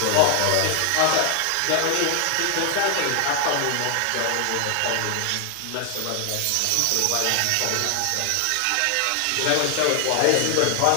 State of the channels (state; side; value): different; both; correlation 0.00